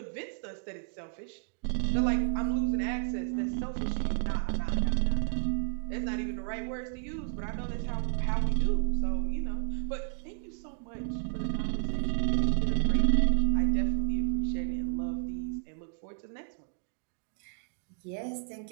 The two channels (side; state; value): left; silent; digital silence